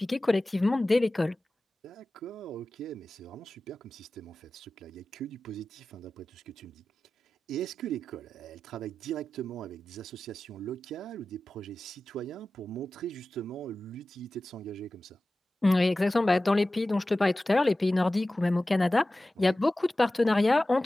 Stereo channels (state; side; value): normal; both; correlation 0.95